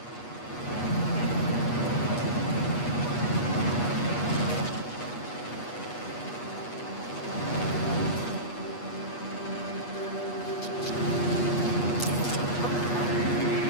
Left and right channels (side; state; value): right; late; 8.3 ms